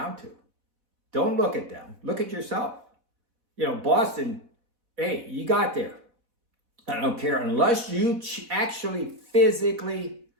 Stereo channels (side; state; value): left; late; 4.1 ms